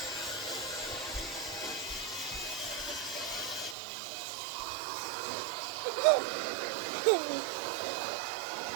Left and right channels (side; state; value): left; drops out; at 3.8 s